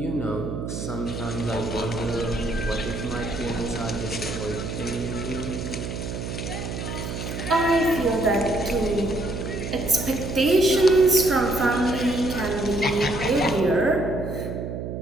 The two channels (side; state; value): right; noise; hum, 6 dB below the sound